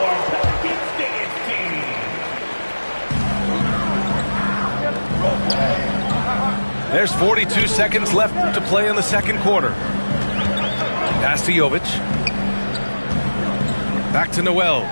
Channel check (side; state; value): both; inverted; correlation -1.00